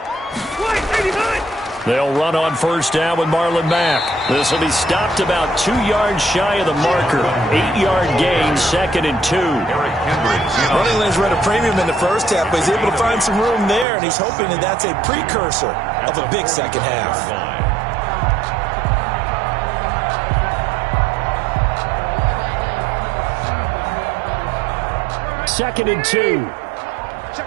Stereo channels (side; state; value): left; drops out; at 13.9 s